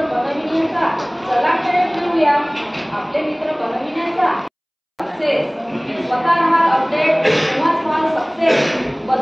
बनविण्याचा चला खेळ खेळूया, आपले मित्र बनविण्याचा सक्सेस। स्वतः राहाल अपडेट तेव्हाच व्हाल सक्सेस।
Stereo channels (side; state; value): both; identical; correlation 1.00